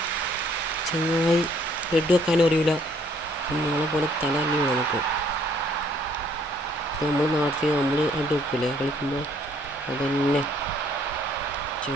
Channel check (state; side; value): normal; both; correlation 0.63